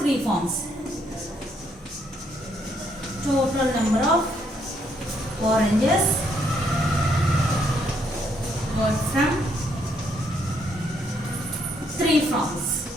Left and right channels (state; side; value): normal; both; correlation 0.72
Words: farms. Total number of oranges got from 3 farms.